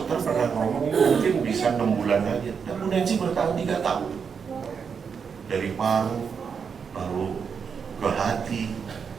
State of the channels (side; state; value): left; quieter; 6.3 dB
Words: pernah ngomong mungkin bisa 6 bulan aja. Dan Bu Nancy bertahan 3 tahun. Dari paru, lalu ke hati,